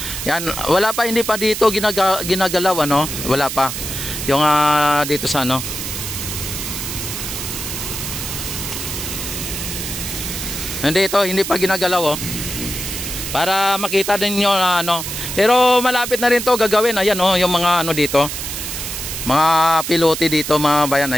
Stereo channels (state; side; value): noise; right; hiss, 5 dB below the sound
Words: Yan, wala pa, hindi pa dito ginagalaw, ano? Wala pa. Yung dito sa ano. Hindi pa ginagalaw, oh. Para makita din niyo na ano. Pero malapit na rin 'to gagawin. Ayan, oh, yung mga ano dito. Mga pilote dito mga bayan,